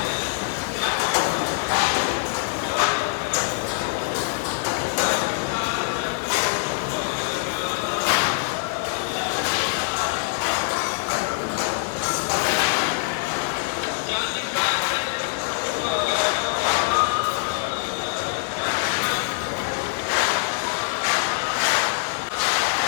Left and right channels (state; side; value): silent; right; 63 dB below the other